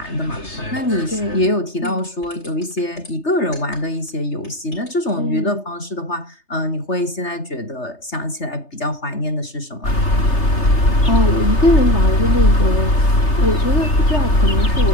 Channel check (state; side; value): late; right; 3.3 ms